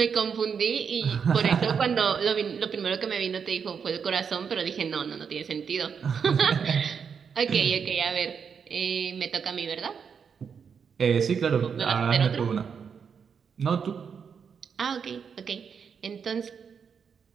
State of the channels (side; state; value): left; quieter; 6.6 dB